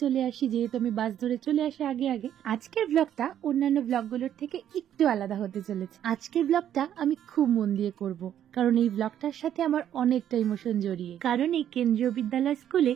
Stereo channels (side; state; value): left; quieter; 10.4 dB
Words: চলে আসি, যেহেতু আমি বাস ধরে চলে আসি আগে আগে। আজকের ব্লগটা অন্যান্য ব্লগগুলোর থেকে একটু আলাদা হতে চলেছে। আজকের ব্লগটা আমি খুব মন দিয়ে করব, কারণ এই ব্লগটার সাথে আমার অনেকটা ইমোশন জড়িয়ে। কারণ এই কেন্দ্রীয় বিদ্যালয় স্কুলে